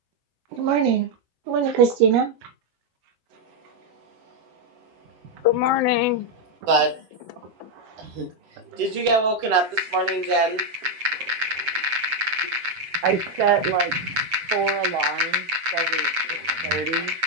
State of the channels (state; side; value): late; left; 7.9 ms